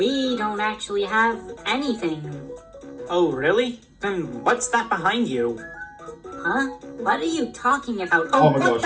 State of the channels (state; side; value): identical; both; correlation 1.00